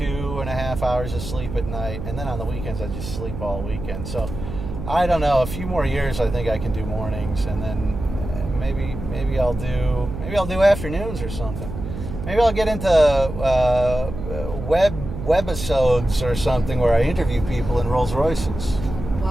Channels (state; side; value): noise; right; hum, 7 dB below the sound